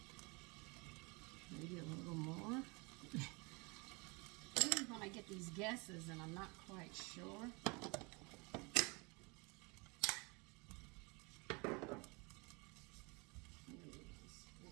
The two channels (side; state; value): left; quieter; 28.8 dB